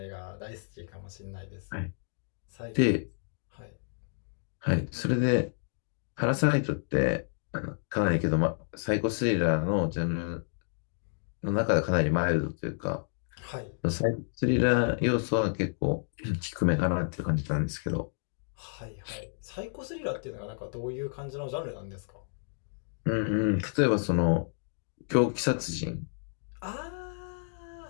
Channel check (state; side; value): silent; right; digital silence